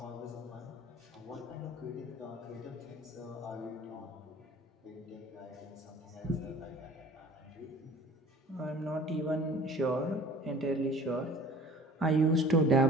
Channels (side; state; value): both; normal; correlation 0.46